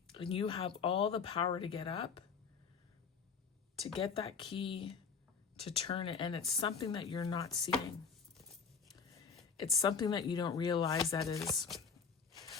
and you have all the power to get up, to get that key, to turn it. And it's something that you're not seeing. It's something that you don't realize that is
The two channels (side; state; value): right; quieter; 5.8 dB